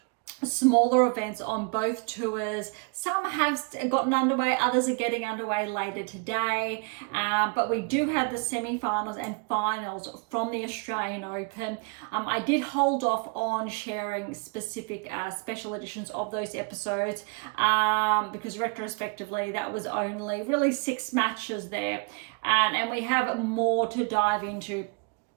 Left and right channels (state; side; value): quieter; left; 33.8 dB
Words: smaller events on both tours. Some have gotten underway, others are getting underway later today, but we do have the semi-finals and finals from the Australian Open. I did hold off on sharing specific special editions of those episodes because retrospectively that was only really 6 matches there, and we have more to dive into